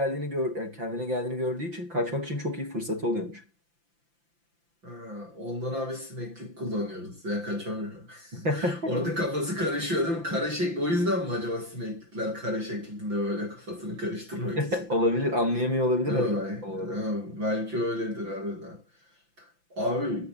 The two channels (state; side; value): late; left; 5.9 ms